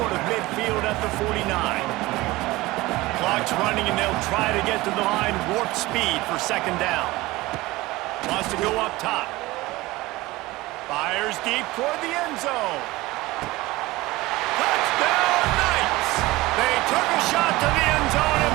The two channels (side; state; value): left; quieter; 19.8 dB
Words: of midfield at the 49. Clock's running, and they'll try to get to the line warp speed for second down. Wants to go up top. Fires deep toward the end zone. Touchdown, Knights! They took a shot to the end zone